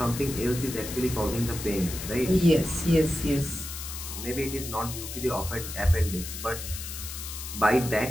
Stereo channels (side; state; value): left; noise; hiss, 8 dB below the sound